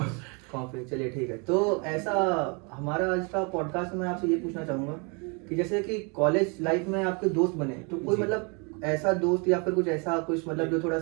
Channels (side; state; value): left; quieter; 33.1 dB